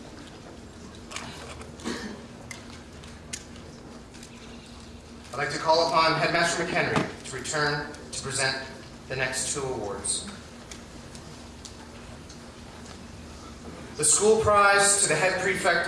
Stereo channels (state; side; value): identical; both; correlation 1.00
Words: I'd like to call upon Headmaster McHenry to return to present the next 2 awards. The school prize to the head